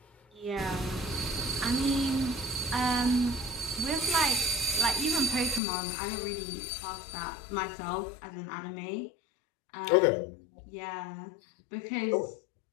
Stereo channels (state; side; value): drops out; right; at 5.6 s